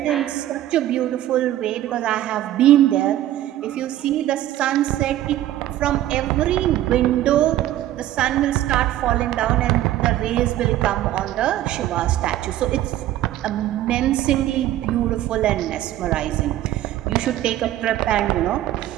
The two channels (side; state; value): left; quieter; 13.6 dB